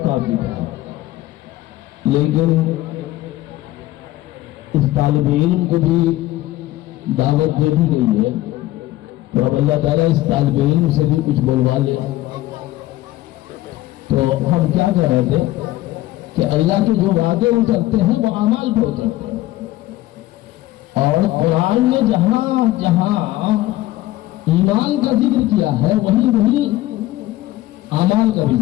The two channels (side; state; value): right; quieter; 16.2 dB